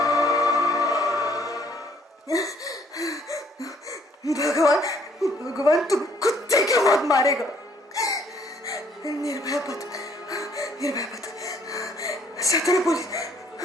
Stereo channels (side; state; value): both; normal; correlation 0.63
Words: भगवान, भगवान तुम कुत्ते की मौत मारेगा। निर्भया पत, निर्भया पत, सतरा पुलिस।